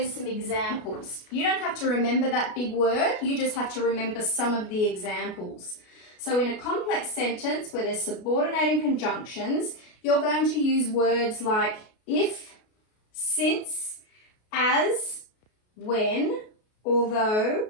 some examples. You don't have to remember that big word, you just have to remember some of the examples. So in a complex sentence where there's subordinating conjunctions, you're going to use words like if, since, as, when, although,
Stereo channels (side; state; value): right; late; 33 ms